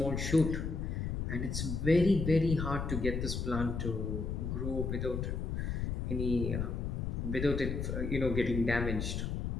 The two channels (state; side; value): noise; left; rumble, 2 dB below the sound